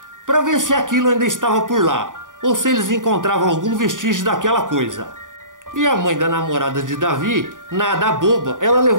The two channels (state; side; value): late; left; 0.88 ms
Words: para ver se aquilo ainda estava por lá, ou se eles encontravam algum vestígio daquela coisa. E a mãe da namorada de Davi, nada boba, ela